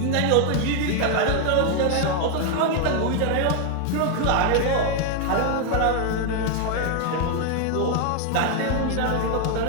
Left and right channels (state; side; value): different; both; correlation 0.00